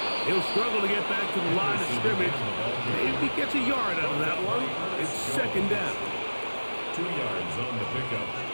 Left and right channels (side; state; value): both; inverted; correlation -1.00